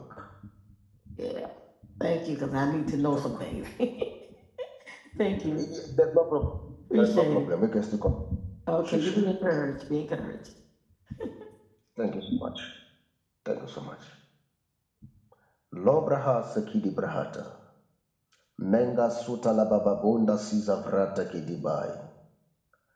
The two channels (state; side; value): identical; both; correlation 1.00